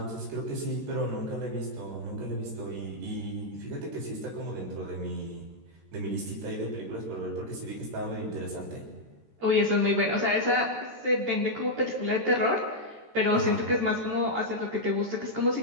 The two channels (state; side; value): late; left; 13 ms